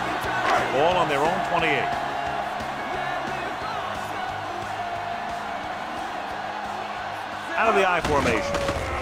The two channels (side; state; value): both; identical; correlation 1.00